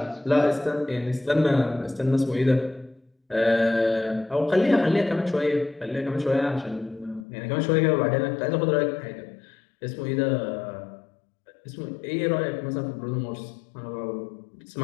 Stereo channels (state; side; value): drops out; right; at 7.2 s